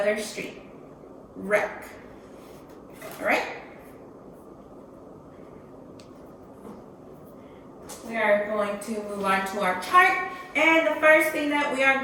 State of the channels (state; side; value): identical; both; correlation 1.00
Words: street. Wreck. All right? We are going to move on to our chart. And the first thing that we